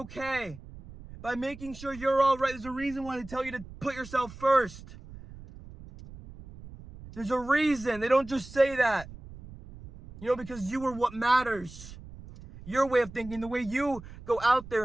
by making sure you're all right. There's a reason why they tell you to put yourself first. There's a reason. They don't just say that. You know, because you are what matters. Your way of thinking, the way you go out there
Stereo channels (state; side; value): noise; right; rumble, 16 dB below the sound